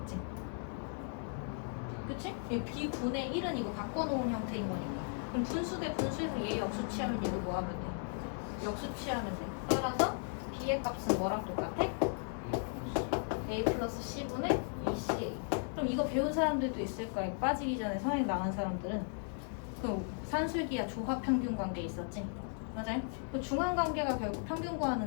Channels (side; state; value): right; silent; 54 dB below the other